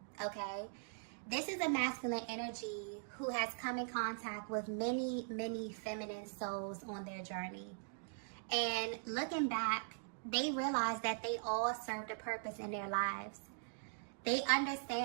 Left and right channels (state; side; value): silent; left; digital silence